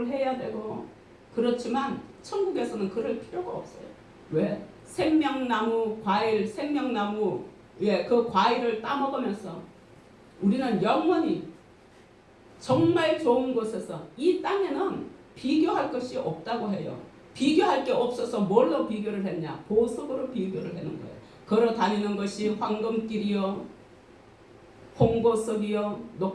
해야 되고, 그렇지만 천국에서는 그럴 필요가 없어요. 왜? 생명나무 과일, 생명나무 그 과일을 따먹으면서 우리는 영원히 정말 좋은 곳에서, 이 땅에는 비교할 것이 없다고 해요. 비교할 게 없어서 뭘로 비교를 했냐? 보석으로 비교를 하는 거예요. 걸어 다니는 것이 황금길이요, 홍보석이요,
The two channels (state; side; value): identical; both; correlation 1.00